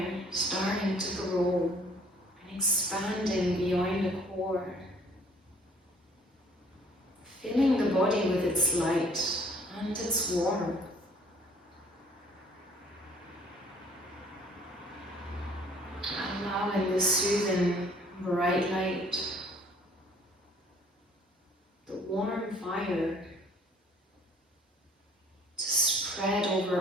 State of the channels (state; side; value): normal; both; correlation 0.57